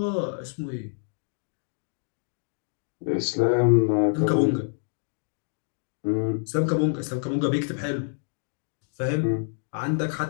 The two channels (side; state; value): right; silent; digital silence